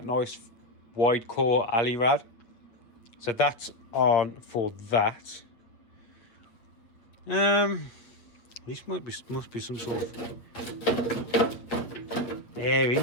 nice wide core alley rad. So that's on for that. This must be some sort of air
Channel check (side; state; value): right; late; 8.5 ms